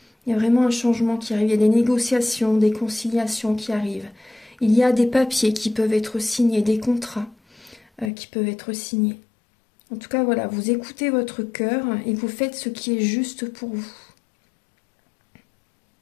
Il y a vraiment un changement qui arrive. Il y a des négociations, des conciliations qui arrivent. Il y a des papiers qui peuvent être signés, des contrats qui peuvent être signés. En tout cas, voilà, vous écoutez votre cœur et vous faites ce qui est juste pour vous.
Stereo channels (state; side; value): drops out; right; at 8.1 s